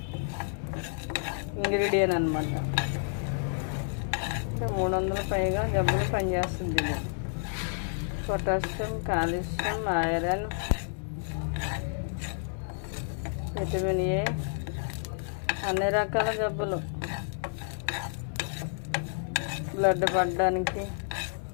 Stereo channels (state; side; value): silent; right; 58 dB below the other